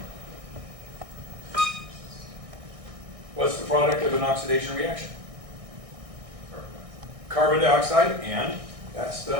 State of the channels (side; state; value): left; late; 1.6 ms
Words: What's the product of an oxidation reaction? Carbon dioxide, and that's